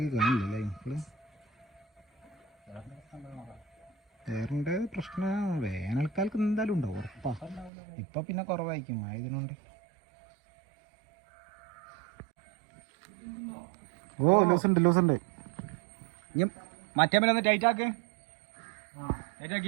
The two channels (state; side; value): drops out; left; at 7.7 s